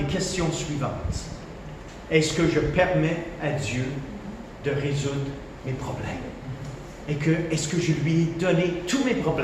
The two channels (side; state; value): both; identical; correlation 1.00